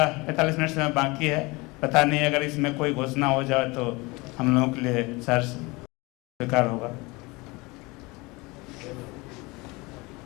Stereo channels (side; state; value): right; quieter; 24.4 dB